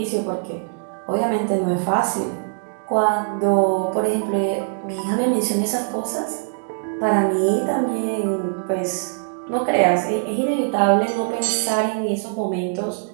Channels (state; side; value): silent; left; digital silence